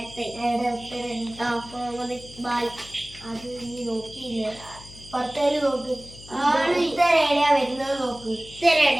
മുഹമ്മദ് ഇക്ബാൽ. അത് നീ നോക്കിയില്ല. പത്തേല് നോക്ക്. ഉത്തരേടിയാ വരുന്നത് നോക്ക്.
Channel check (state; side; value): noise; left; hum, 19 dB below the sound